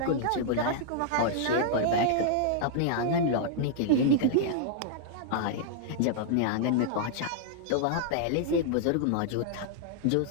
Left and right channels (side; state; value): both; different; correlation -0.01